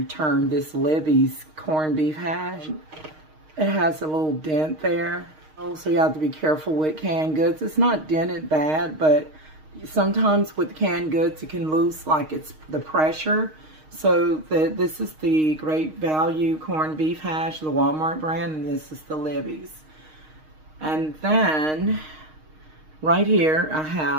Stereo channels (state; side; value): late; left; 6.4 ms